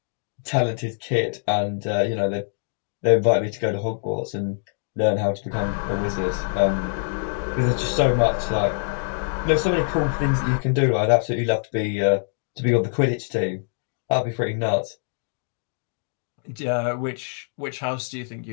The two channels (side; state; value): right; silent; 62 dB below the other